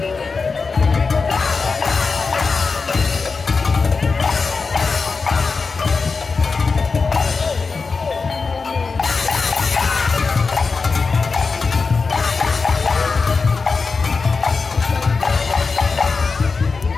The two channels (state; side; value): quieter; right; 4.6 dB